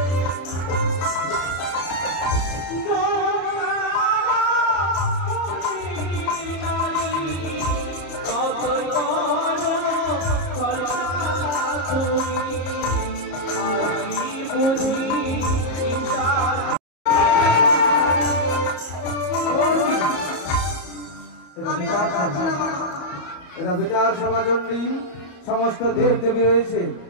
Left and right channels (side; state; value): right; late; 34 ms